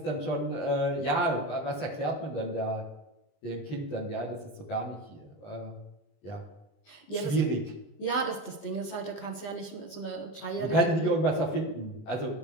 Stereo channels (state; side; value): late; right; 20 ms